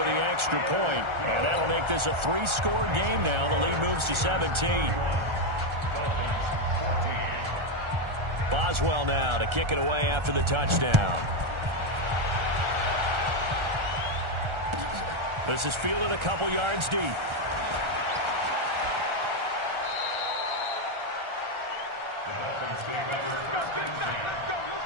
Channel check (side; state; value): left; late; 1.4 ms